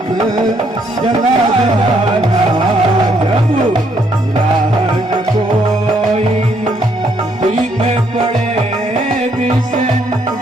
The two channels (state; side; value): normal; both; correlation 0.70